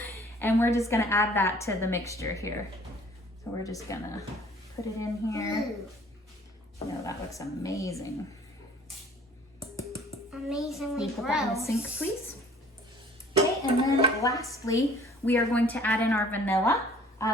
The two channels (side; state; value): both; normal; correlation 0.53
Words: And we're just gonna add that to the mixture here. So we're just gonna put it in here. Oh, that looks amazing. Amazingly Can you put that in the gross. sink, please? Okay, and then lastly, we are going to add in our vanilla.